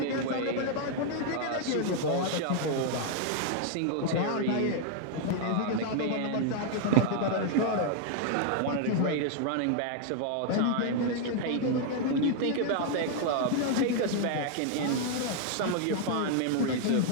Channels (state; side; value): different; both; correlation 0.00